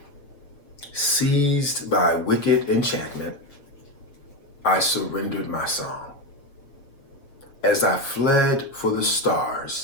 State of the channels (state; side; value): late; right; 7.0 ms